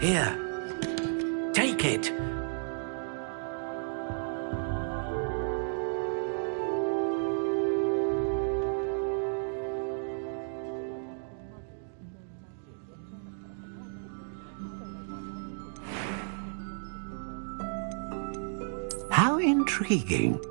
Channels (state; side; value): silent; left; digital silence